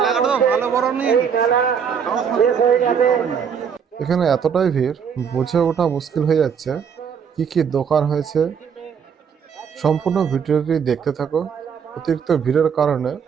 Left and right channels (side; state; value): left; quieter; 7.1 dB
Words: মেলা শেষ হয়ে যাবে। এখানে এতটাই ভিড়, বুঝে ওঠা মুশকিল হয়ে যাচ্ছে কি কি দোকান হয়েছে। সম্পূর্ণ ভিডিওটি দেখতে থাকো। অতিরিক্ত ভিড়ের কারণে